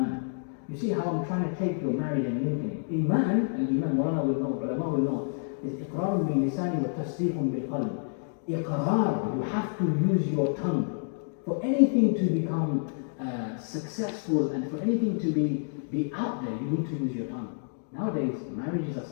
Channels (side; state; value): right; silent; digital silence